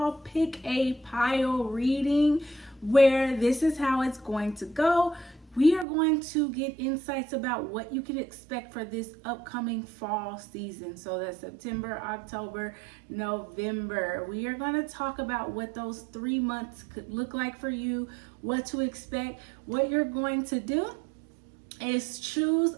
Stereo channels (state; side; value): drops out; left; at 5.9 s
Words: pick a pile reading where this is how it's going to go. We are going to get insights about what you can expect for this upcoming fall season. So that's September, October, November. We are going to talk about what those 3 months could look like for you, what to expect. What you're going to do is choose